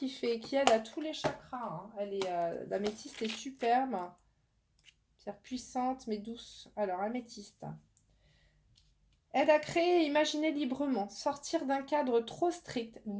aide à tous les chakras. Hein. L'améthyste est superbe. Pierre puissante mais douce. Alors, améthyste. Aide à créer et imaginer librement, sortir d'un cadre trop strict,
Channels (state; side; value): identical; both; correlation 1.00